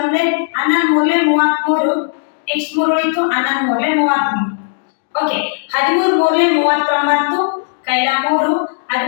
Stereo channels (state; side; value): silent; right; digital silence